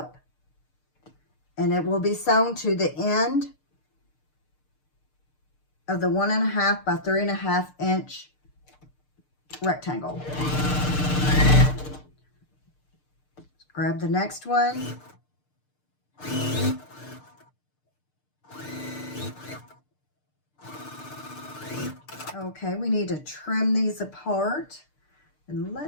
And it will be sewn to the end of the 1.5 by 3.5 inch rectangle. Grab the next one. Okay, we need to trim these apart. And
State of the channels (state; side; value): late; right; 6.6 ms